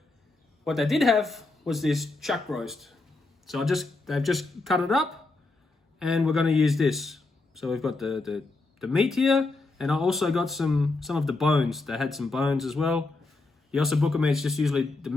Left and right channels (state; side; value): quieter; right; 3.4 dB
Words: what they did have was this chuck roast. So they've just cut it up and we're gonna use this. So we've got the meat here, and I also got some of the bones. They had some bones as well. The ossobuco meat is just usually the